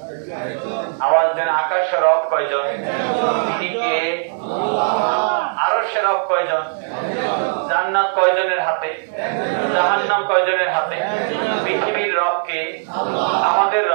আওয়াজ দেন, আকাশের রব কয়জন? তিনি কে? আরশের রব কয়জন? জান্নাত কয়জনের হাতে? জাহান্নাম কয়জনের হাতে? পৃথিবীর রব কে? আমাদের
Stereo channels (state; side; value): silent; left; 66 dB below the other